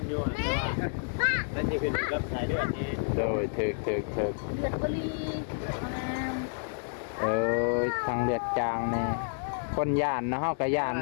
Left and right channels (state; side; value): silent; right; 58 dB below the other